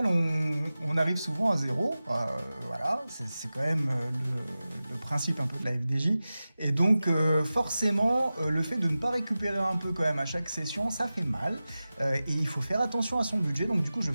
on arrive souvent à zéro. Voilà, c'est quand même le principe un peu de la FDJ. Et donc forcément le fait de ne pas récupérer un peu quand même à chaque session, ça fait mal. Et il faut faire attention à son budget, donc du coup je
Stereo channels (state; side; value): inverted; both; correlation -0.95